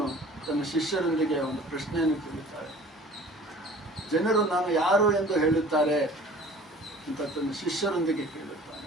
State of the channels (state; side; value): normal; both; correlation 0.46